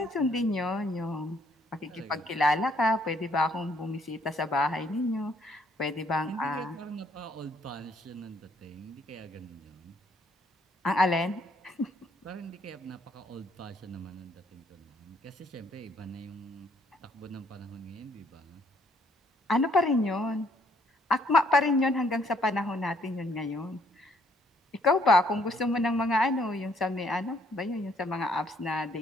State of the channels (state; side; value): normal; both; correlation 0.67